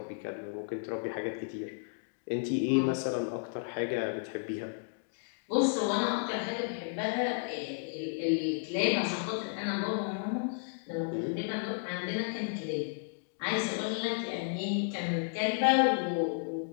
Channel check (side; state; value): right; silent; digital silence